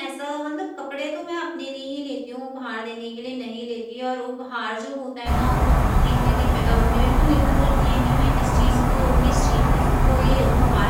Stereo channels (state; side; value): identical; both; correlation 1.00